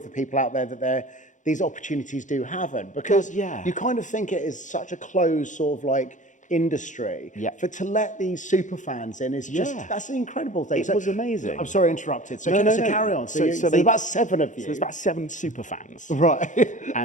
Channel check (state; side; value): late; right; 0.36 ms